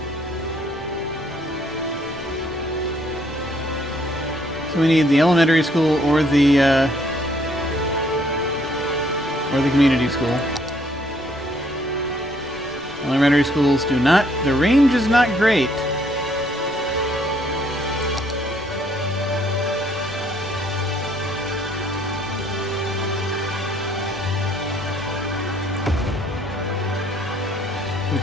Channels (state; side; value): normal; both; correlation 0.66